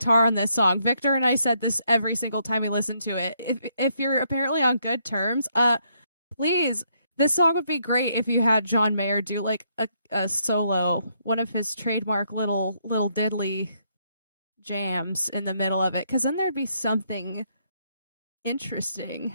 on this song. Victor and I said this every single time we listened to it. If you're apparently on good terms, please, this song would be great if you had John Mayer do like a solo, one of his trademark little diddly jams in the middle of it, because then there'd be something interesting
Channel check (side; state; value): both; inverted; correlation -0.73